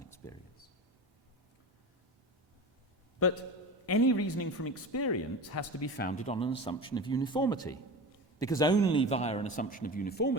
experience. But any reasoning from experience has to be founded on an assumption of uniformity, because only via an assumption of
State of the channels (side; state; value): both; normal; correlation 0.30